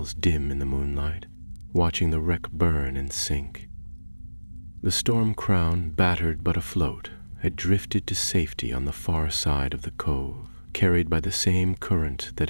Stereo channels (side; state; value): both; inverted; correlation -1.00